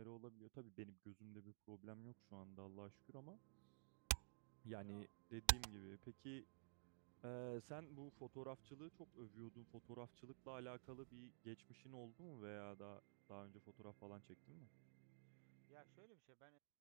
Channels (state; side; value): silent; left; digital silence